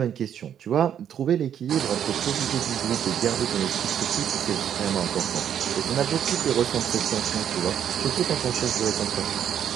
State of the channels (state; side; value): quieter; left; 9.4 dB